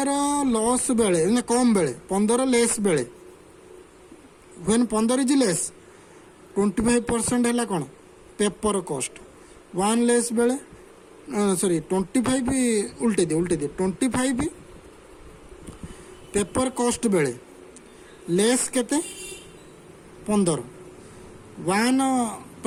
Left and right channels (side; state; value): both; identical; correlation 1.00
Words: लॉस बेले कम बेले 15 लेस बेले व्हेन 15 इज लेस 25% है कौन पेपर कॉस्ट 1 लेस बेले सॉरी 25 उल्टे दिए 25 पेपर कॉस्ट बेले लेस केते 15 1